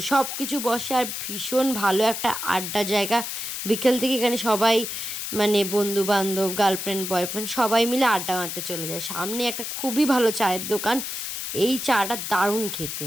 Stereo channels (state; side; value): noise; left; hiss, 5 dB below the sound